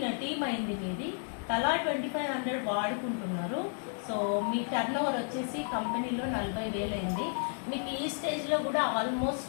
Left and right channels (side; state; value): right; silent; 56 dB below the other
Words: టీమ్ అయింది మీది. తలా 2500 వాడుకుంటున్నారు. సో మీ టర్నోవర్ వచ్చేసి కంపెనీలో 40,000 అయింది. మీకు ఈ స్టేజ్లో కూడా ఆల్మోస్ట్